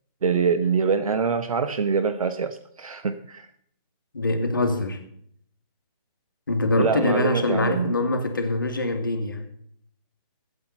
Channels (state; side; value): inverted; both; correlation -0.49